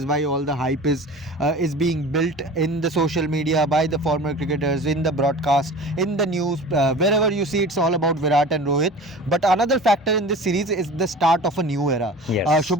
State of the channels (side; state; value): both; normal; correlation 0.38